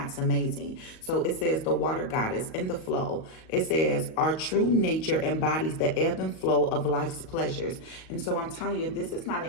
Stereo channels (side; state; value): right; late; 38 ms